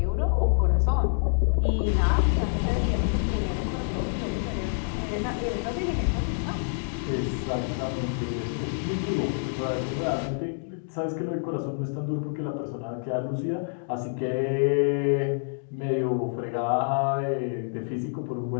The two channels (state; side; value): silent; right; digital silence